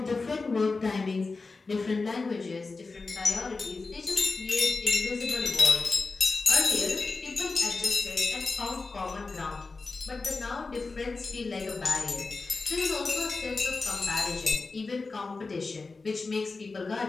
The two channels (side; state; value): right; quieter; 3.9 dB